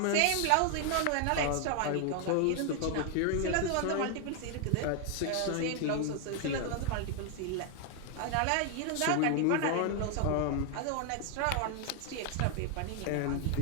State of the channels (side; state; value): both; different; correlation 0.00